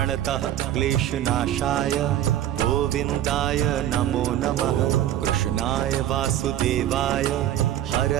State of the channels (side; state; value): left; quieter; 12.1 dB